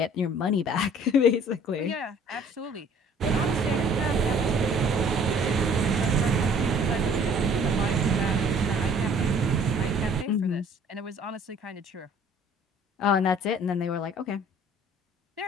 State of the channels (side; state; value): both; normal; correlation 0.54